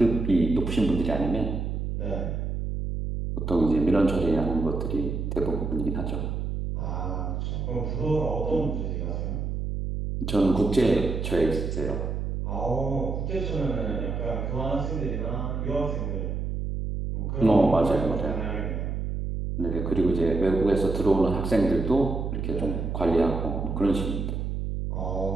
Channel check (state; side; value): noise; right; hum, 2 dB below the sound